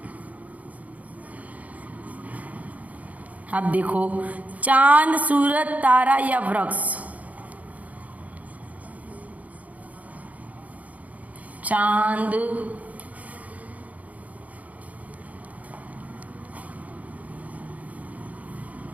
अब देखो, चांद, सूरज, तारा या वृक्ष? चांद,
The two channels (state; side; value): late; left; 0.073 ms